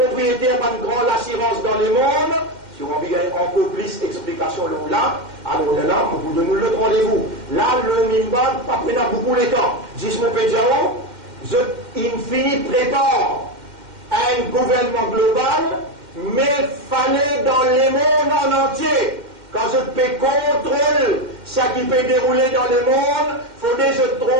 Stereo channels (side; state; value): left; late; 2.1 ms